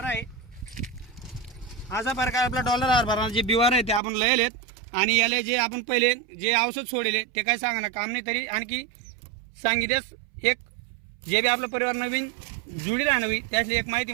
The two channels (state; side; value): drops out; left; at 4.0 s